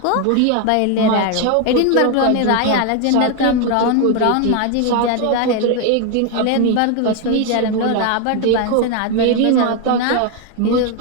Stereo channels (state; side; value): different; both; correlation 0.01